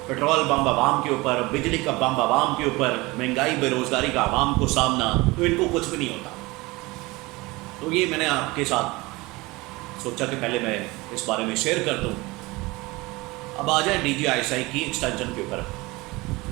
پیٹرول بم عوام کے اوپر، بجلی کا بم عوام کے اوپر، مہنگائی بے روزگاری کا عوام کو سامنا، تو ان کو کچھ بھی نہیں ہوتا۔ تو یہ میں نے آپ کے ساتھ سوچا کہ پہلے میں اس بارے میں شیئر کر دوں۔ اب آ جائیں ڈی جی آئی ایس آئی کی ایکسٹینشن کے اوپر۔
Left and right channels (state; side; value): quieter; left; 22.5 dB